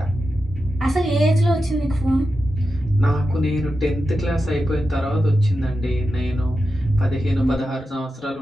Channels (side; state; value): both; normal; correlation 0.90